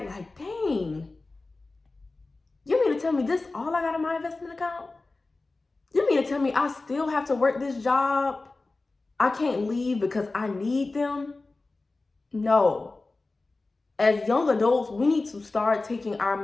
like, dang, you mean to tell me this all I got in my investment account? You mean to tell me I still have to work this job? I can't leave because I need them? No. As young adults, we need to start taking our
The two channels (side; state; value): right; quieter; 3.4 dB